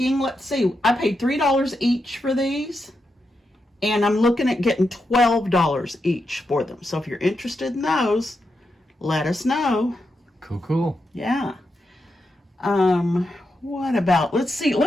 let's see, I paid $3 each for these, and I'm looking at getting $12 each for them. So if you're interested in those, let us know. Cool. Yeah. What about, let's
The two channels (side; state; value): both; normal; correlation 0.85